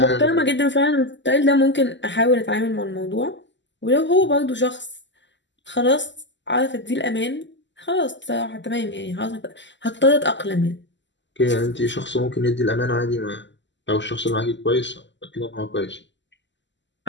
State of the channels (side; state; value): right; late; 0.53 ms